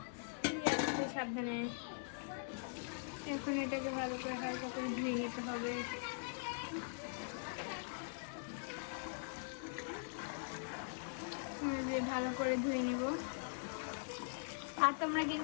সাবধানে এখন এটাকে ভালো করে হালকা করে ধুয়ে নিতে হবে। ভালো করে ধুয়ে নিব। আর তোমরা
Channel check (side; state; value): right; silent; digital silence